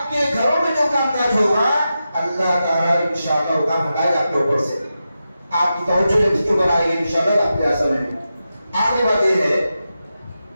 घरों में जो कामकाज होगा अल्लाह ताला इंशाअल्लाह वो काम हटाएगा आपके ऊपर से, आपकी तवज्जो जब इसके ऊपर आएगी इंशाअल्लाह आपके असल में। आगे बात ये है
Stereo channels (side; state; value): both; inverted; correlation -0.90